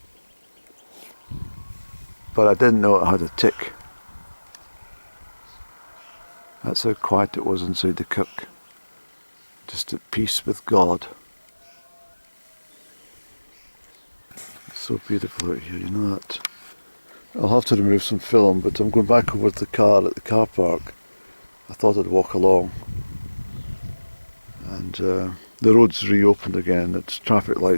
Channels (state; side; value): inverted; both; correlation -1.00